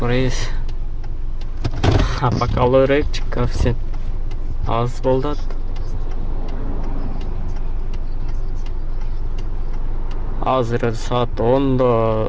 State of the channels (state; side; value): identical; both; correlation 1.00